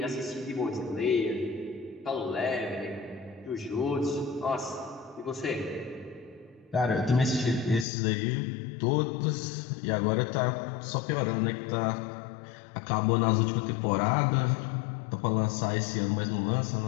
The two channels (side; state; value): right; drops out; at 7.9 s